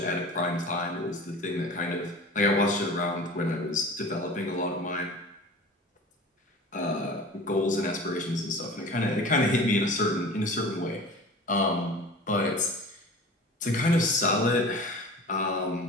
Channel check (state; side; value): normal; both; correlation 0.38